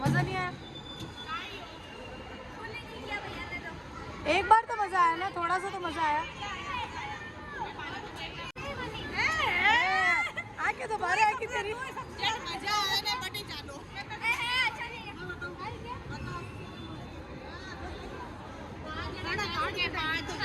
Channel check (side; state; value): both; identical; correlation 1.00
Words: नहीं आया। एक बार तो मजा आया ना, थोड़ा सा तो मजा आया। आके दोबारा आके तेरी मजा आया ना, बटे चालो।